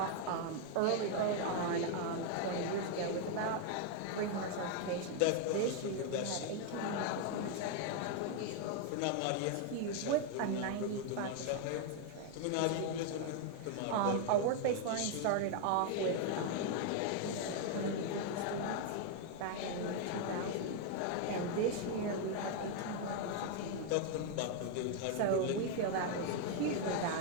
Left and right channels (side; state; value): both; different; correlation 0.01